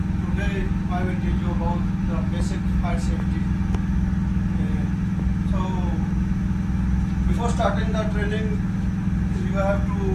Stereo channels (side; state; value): both; identical; correlation 1.00